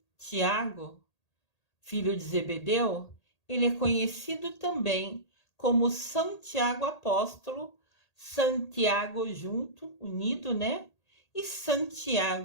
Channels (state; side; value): late; right; 1.8 ms